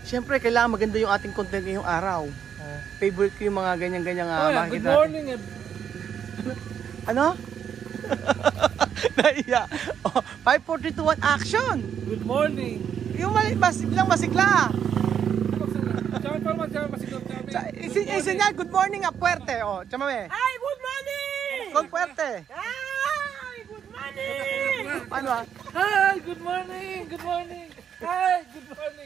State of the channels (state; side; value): quieter; left; 8.4 dB